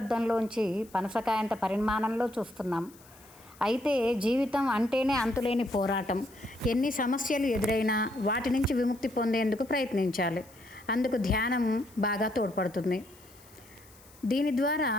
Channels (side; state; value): left; noise; hiss, 25 dB below the sound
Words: పనసకాయంత పరిమాణంలో చూస్తున్నాం. అయితే జీవితం అంటేనే అంతులేని పోరాటం. ఎన్ని సమస్యలు ఎదురైనా వాటి నుంచి విముక్తి పొందేందుకు ప్రయత్నించాలి. అందుకు ధ్యానం బాగా తోడ్పడుతుంది. దీని ద్వారా